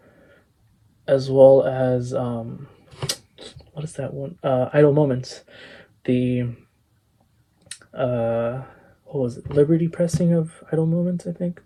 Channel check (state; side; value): identical; both; correlation 1.00